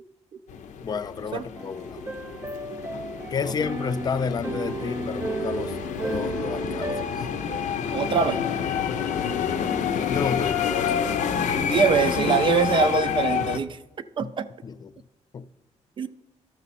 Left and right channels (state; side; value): normal; both; correlation 0.38